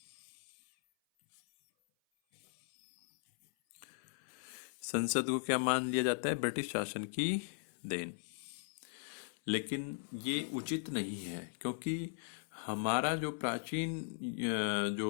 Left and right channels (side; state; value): right; silent; 52 dB below the other